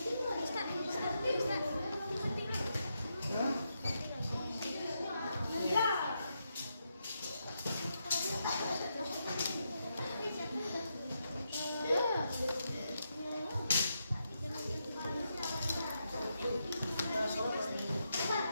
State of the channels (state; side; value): inverted; both; correlation -0.83